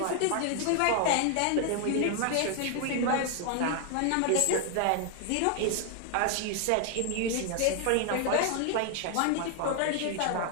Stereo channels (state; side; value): different; both; correlation 0.00